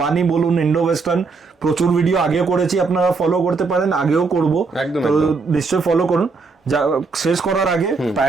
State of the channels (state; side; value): quieter; left; 4.3 dB